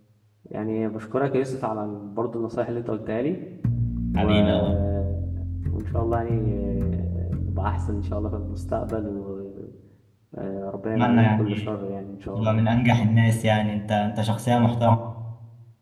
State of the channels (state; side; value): identical; both; correlation 1.00